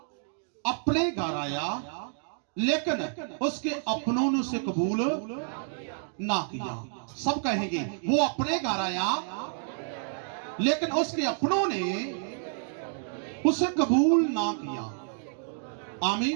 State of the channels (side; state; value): left; silent; digital silence